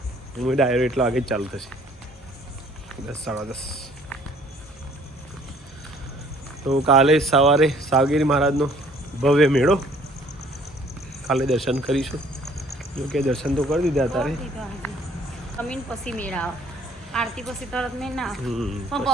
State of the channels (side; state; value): both; normal; correlation 0.58